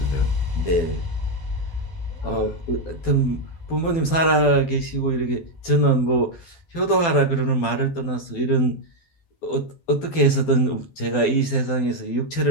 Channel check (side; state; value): right; late; 12 ms